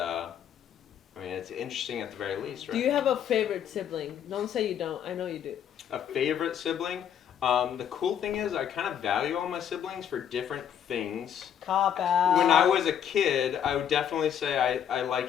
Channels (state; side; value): quieter; right; 9.1 dB